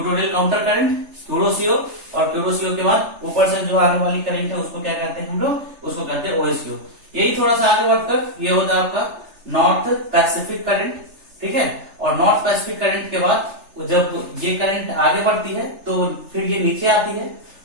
counter current, Kuroshio, और क्यूरोसीओ के बाद ऊपर से जो आने वाली करंट है उसको क्या कहते हैं हम लोग, उसको कहते हैं ओएसयू। यही थोड़ा सा आगे बढ़कर ये होता है आपका नॉर्थ पैसिफिक करंट। ठीक है, और नॉर्थ पैसिफिक करंट के बाद जब ये करंट आगे बढ़ती है तो फिर ये नीचे आती है,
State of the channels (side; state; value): left; late; 3.3 ms